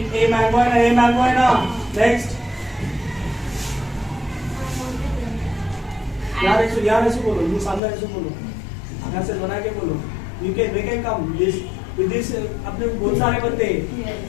a mango है ना. Next. यहाँ ऐसे बोलो. ये सामने ऐसे बोलो. यहाँ से बना के बोलो. We can come. With this अपने बहुत सारे बनते हैं.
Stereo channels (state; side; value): drops out; right; at 7.8 s